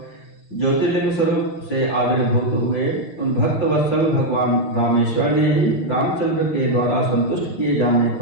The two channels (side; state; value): right; late; 5.8 ms